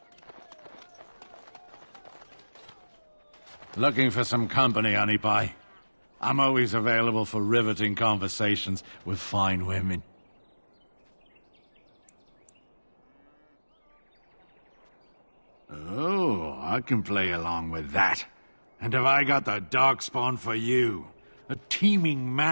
Looking for some company, honey pie? I'm always available for riveting conversations with fine women. Oh, I can play along with that. And have I got the darkspawn for you? A teeming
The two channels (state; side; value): inverted; both; correlation -1.00